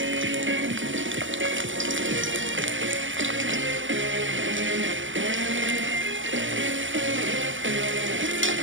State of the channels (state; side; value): late; left; 0.56 ms